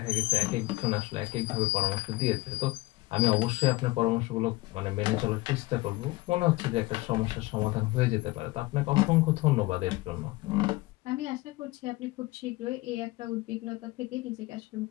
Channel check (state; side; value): quieter; right; 20.7 dB